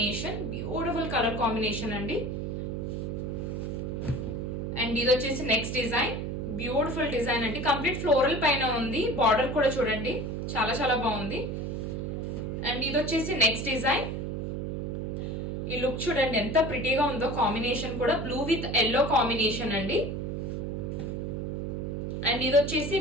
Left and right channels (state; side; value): noise; right; hum, 3 dB below the sound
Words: Beautiful colour combination అండి. అండ్ ఇది వచ్చేసి నెక్స్ట్ డిజైన్. బ్యూటిఫుల్ డిజైన్ అండి. కంప్లీట్ ఫ్లోరల్ పైన ఉంది. బార్డర్ కూడా చూడండి చాలా చాలా బాగుంది. అండ్ ఇది వచ్చేసి నెక్స్ట్ డిజైన్. ఈ లుక్ చూడండి ఎంత ప్రిటీగా ఉందో. కాంబినేషన్ కూడా బ్లూ విత్ ఎల్లో కాంబినేషన్ అండి. అండ్ ఇది వచ్చేసి